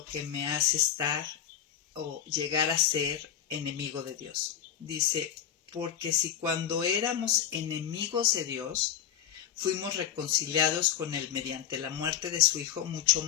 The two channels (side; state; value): right; quieter; 9.8 dB